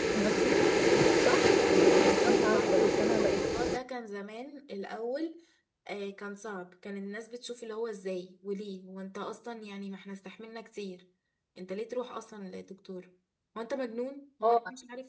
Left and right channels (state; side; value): identical; both; correlation 1.00